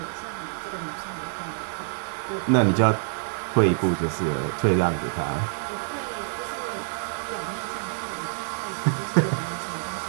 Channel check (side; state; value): left; silent; 61 dB below the other